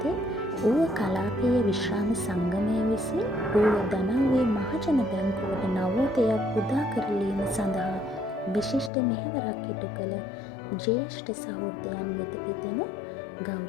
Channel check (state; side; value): drops out; right; at 8.9 s